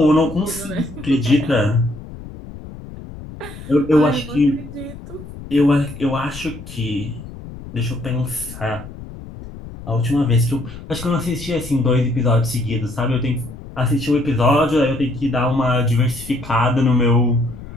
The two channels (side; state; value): left; noise; rumble, 14 dB below the sound